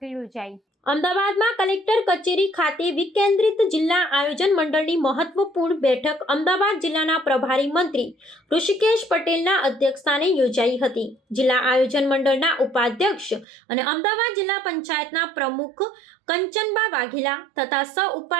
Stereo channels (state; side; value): drops out; left; at 13.5 s